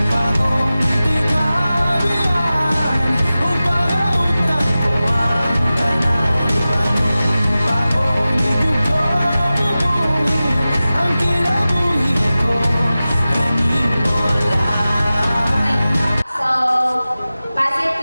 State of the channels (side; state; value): both; inverted; correlation -0.96